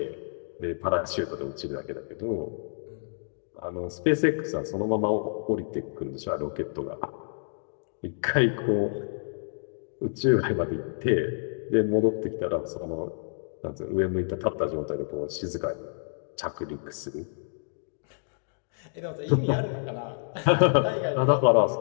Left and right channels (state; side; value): silent; right; digital silence